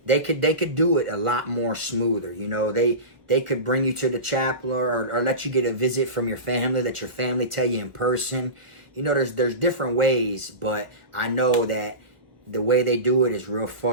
they could do it a lot more smoother, you know. They could bring you to the chapel or let you get a visit from your family, let your family tell you in person. You know, there's different ways, but I know that the way they do it is real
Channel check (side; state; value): left; late; 1.1 ms